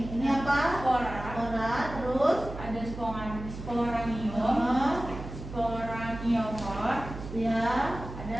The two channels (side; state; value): right; noise; hum, 10 dB below the sound